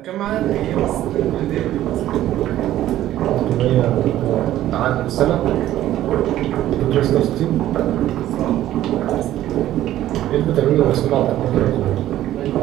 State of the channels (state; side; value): quieter; left; 13.4 dB